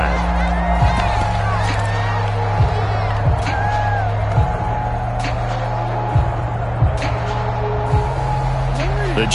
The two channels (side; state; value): both; identical; correlation 1.00